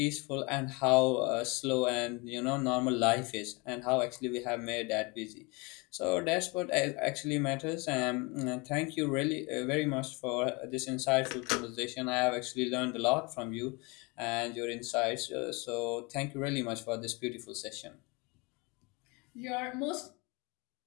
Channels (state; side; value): quieter; right; 28.1 dB